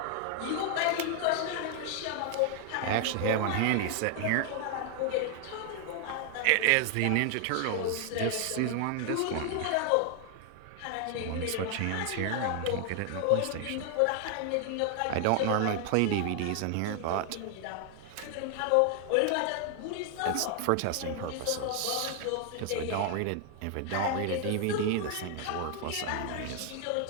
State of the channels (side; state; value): both; different; correlation 0.00